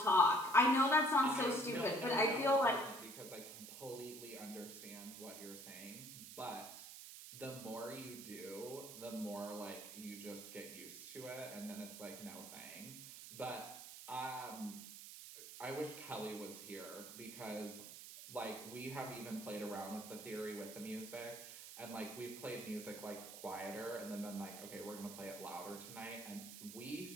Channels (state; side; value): noise; right; hiss, 12 dB below the sound